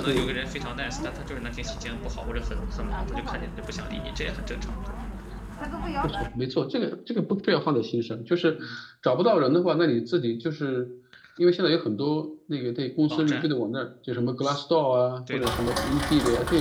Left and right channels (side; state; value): both; identical; correlation 1.00